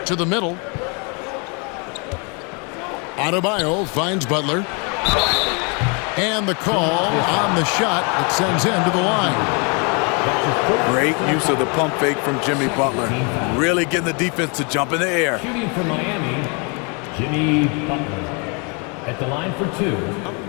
To the middle. Adebayo finds Butler. And the call on the shot that sends him to the line. Great use of the pump fake from Jimmy Butler. Really getting the defense to jump in the air. Shooting for Miami, Jimmy Butler. At the line for 2.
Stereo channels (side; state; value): right; quieter; 33.7 dB